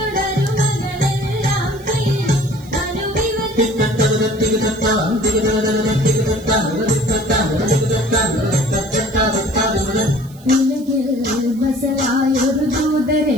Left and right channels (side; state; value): right; noise; hiss, 25 dB below the sound